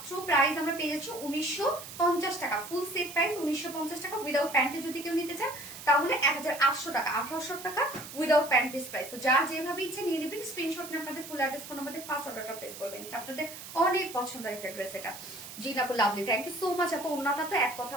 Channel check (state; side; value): noise; right; hiss, 12 dB below the sound